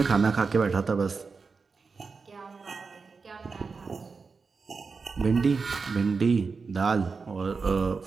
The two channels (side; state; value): left; quieter; 4.8 dB